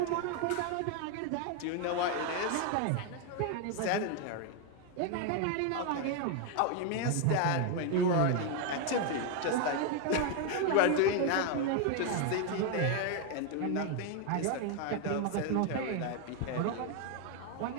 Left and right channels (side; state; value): both; different; correlation 0.01